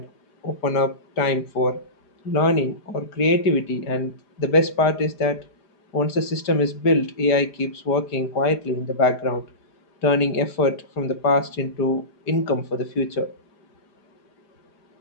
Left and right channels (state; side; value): late; right; 4.9 ms